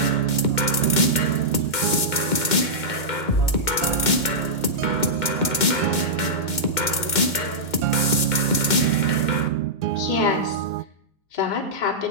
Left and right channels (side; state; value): right; late; 2.1 ms